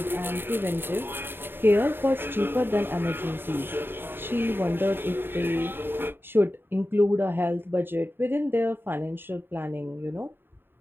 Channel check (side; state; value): left; late; 0.10 ms